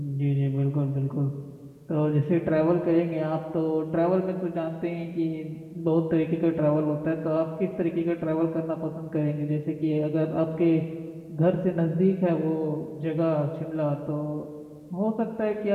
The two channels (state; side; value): identical; both; correlation 1.00